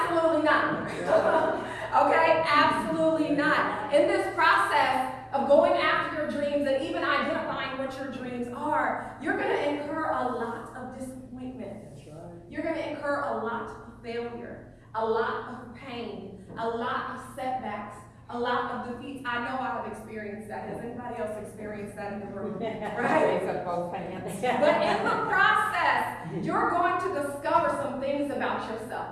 not. Okay? Absolutely not. In this process of going after your dreams and even identifying what your dreams are, you're going to incur a lot of disappointment. You're going to incur a lot of failure, a lot of pain, a lot of setbacks, a lot of defeats. I know I have experienced that. Has anybody else experienced that in the room? Right? But in the process, you're going to discover some things about yourself.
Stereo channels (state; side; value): identical; both; correlation 1.00